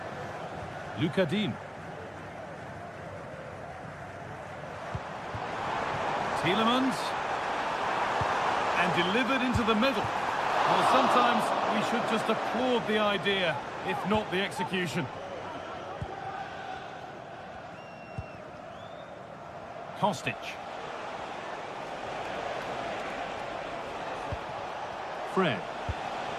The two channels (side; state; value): both; identical; correlation 1.00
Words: Lucas Digne. Tielemans. And delivered into the middle. Well, sometimes we should just applaud the idea, if not the execution. Kostic. Fred.